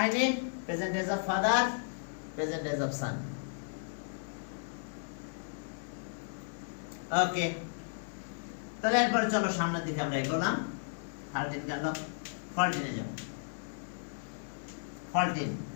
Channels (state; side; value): silent; right; 55 dB below the other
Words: present age of father, present age of son. Okay, তাহলে এরপরে চলো সামনের দিকে আমরা এগোলাম। 13 গেল, 14 এ যাও। 14,